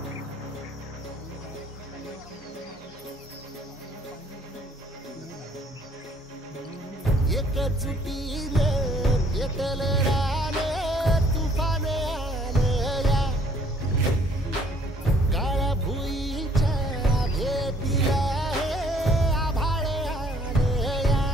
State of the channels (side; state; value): both; normal; correlation 0.60